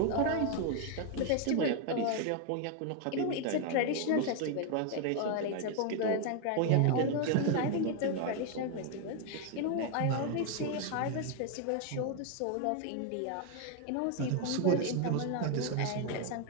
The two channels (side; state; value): both; different; correlation 0.00